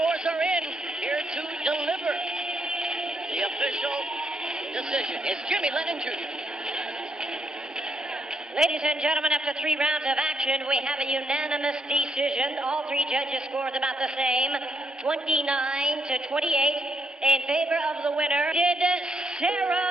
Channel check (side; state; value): both; normal; correlation 0.76